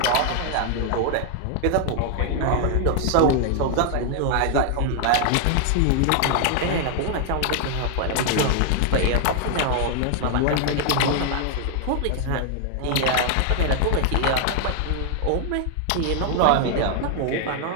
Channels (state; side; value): different; both; correlation 0.00